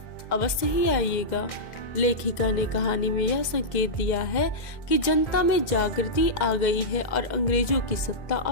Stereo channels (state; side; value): late; right; 2.0 ms